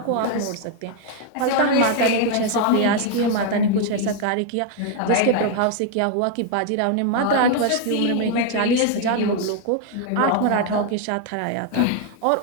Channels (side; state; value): both; different; correlation 0.01